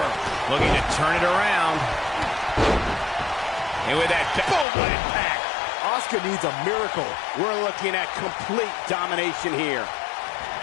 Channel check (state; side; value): drops out; right; at 4.7 s